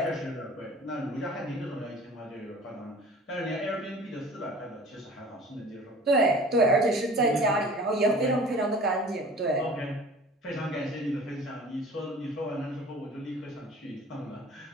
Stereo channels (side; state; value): both; normal; correlation 0.44